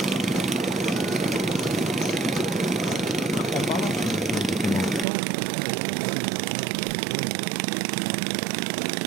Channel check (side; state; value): left; drops out; at 5.1 s